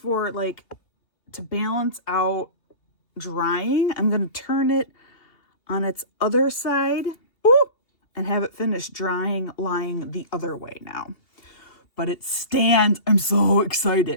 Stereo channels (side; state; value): right; late; 2.7 ms